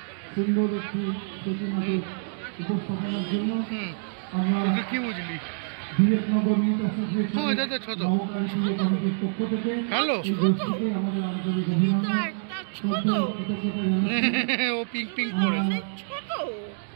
সুন্দর একটি প্রতিমাকে উপস্থাপনের জন্য। আমরা কি বুঝলি? বিবেকনগর মিট অ্যাসোসিয়েশনের কমিটির পক্ষ থেকে হ্যালো গোষ্ঠীকে আমাদের আন্তরিক অভিনন্দন, শ্রদ্ধা ও কৃতজ্ঞতা জানাচ্ছি। ও পিঙ্ক পিঙ্ক করেছে। ছোট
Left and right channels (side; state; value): left; silent; digital silence